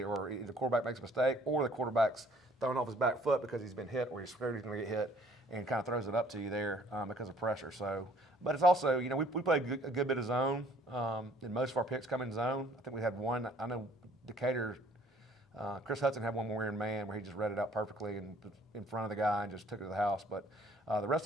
or either the quarterback makes a mistake or the quarterback's throwing off his back foot because he's been hit or he's scared he's going to get hit, and kind of throws it up to you there because of pressure. So, but it's also, we play a good bit of zone, and most of our picks come in zone. I think we had one. I know Decatur, Chris Hudson had one where we were in man where he just read it out perfectly and in front of the guy and just took it to the house. But the rest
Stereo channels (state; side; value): normal; both; correlation 0.58